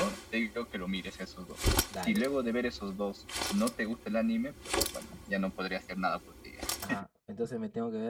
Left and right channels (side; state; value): both; identical; correlation 1.00